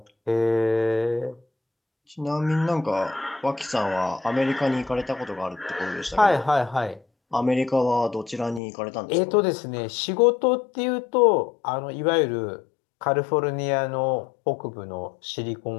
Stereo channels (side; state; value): right; drops out; at 8.6 s